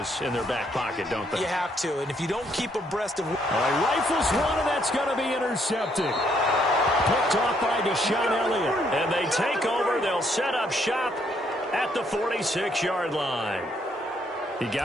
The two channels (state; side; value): normal; both; correlation 0.71